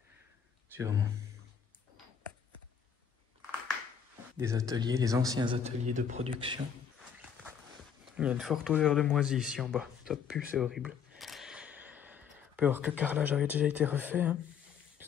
Sûrement. Des ateliers, les anciens ateliers de production. Il y a une forte odeur de moisi ici en bas. Ça pue, c'est horrible. On peut voir que le carrelage avait déjà été refait. Hein.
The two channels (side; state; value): right; quieter; 7.4 dB